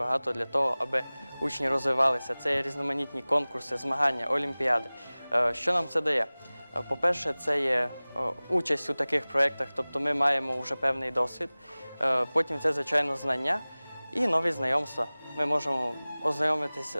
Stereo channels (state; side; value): inverted; both; correlation -0.99